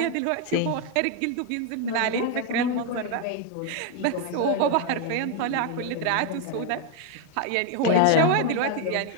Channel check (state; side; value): different; both; correlation 0.01